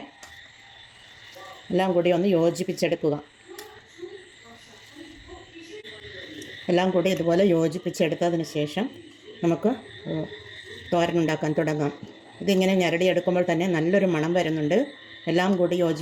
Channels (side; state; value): both; identical; correlation 1.00